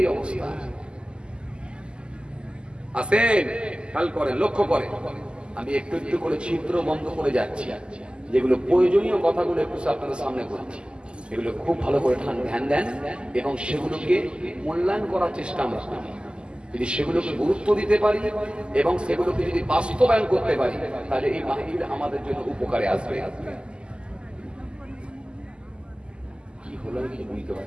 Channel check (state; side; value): late; left; 0.049 ms